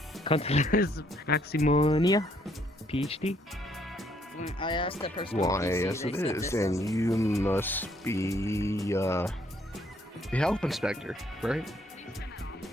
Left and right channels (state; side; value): normal; both; correlation 0.68